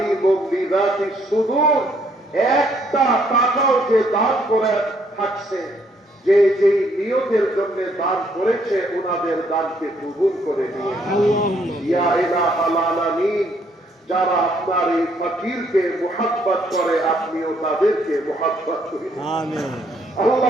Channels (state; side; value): normal; both; correlation 0.68